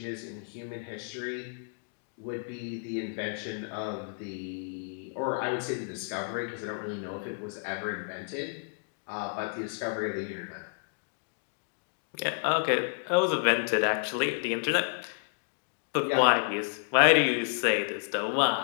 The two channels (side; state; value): right; silent; digital silence